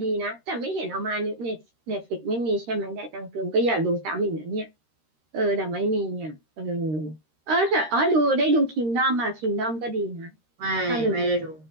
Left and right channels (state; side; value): late; left; 13 ms